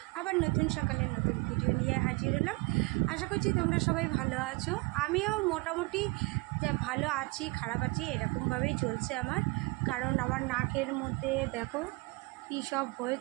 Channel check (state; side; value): quieter; left; 25.9 dB